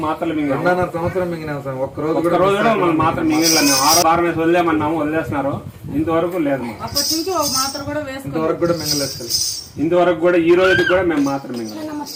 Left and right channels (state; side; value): identical; both; correlation 1.00